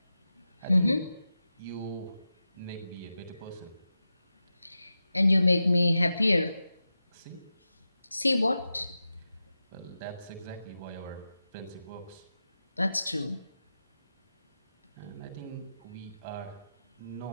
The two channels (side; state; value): both; inverted; correlation -0.92